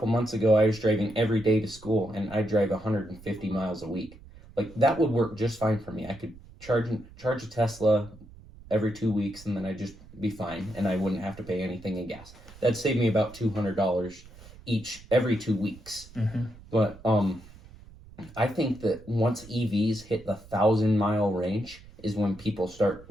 months ago, I was driving every day to school, and I drive 150 miles a week. Like that would work just fine for me. I could charge a Tesla every 2 weeks, and then I'd just be fine, and I wouldn't have to pay anything in gas. That'd save me about $200 each every 2 weeks. Mm-hmm. But I think that once EVs hit the 1,000-mile range is when people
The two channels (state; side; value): noise; right; rumble, 20 dB below the sound